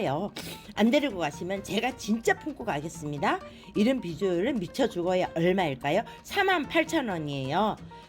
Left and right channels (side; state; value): both; identical; correlation 1.00